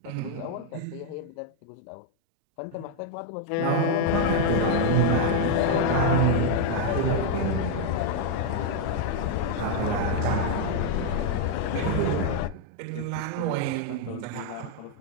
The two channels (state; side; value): different; both; correlation 0.00